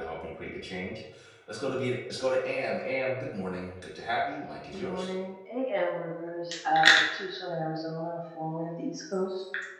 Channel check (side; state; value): both; identical; correlation 1.00